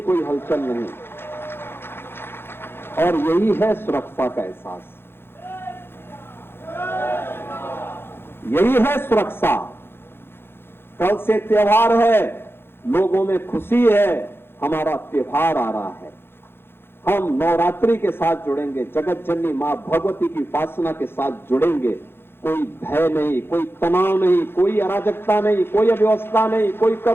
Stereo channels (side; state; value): right; late; 0.11 ms